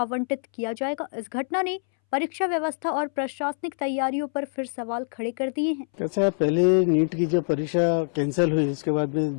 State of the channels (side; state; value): right; silent; 62 dB below the other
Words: किया जाएगा। इस घटना ने परीक्षा व्यवस्था और प्रशासनिक तैयारियों पर फिर सवाल खड़े कर दिए हैं। कैसा है, पहले नीट की जो परीक्षा कैंसिल हुई, उसके बाद में